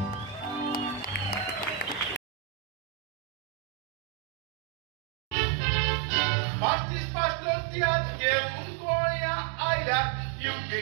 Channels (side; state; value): left; drops out; at 5.4 s